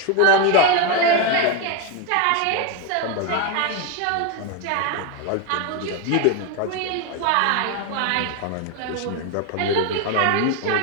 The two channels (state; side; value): different; both; correlation 0.02